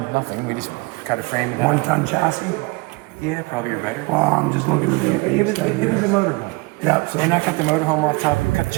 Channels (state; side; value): quieter; left; 26.1 dB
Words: nothing. We just cut a frame and half. 1-ton chassis. Yeah, probably or better. Well, I'm just looking at the It was a motorhome. Yeah, so And I cut the motorhome off top and cut the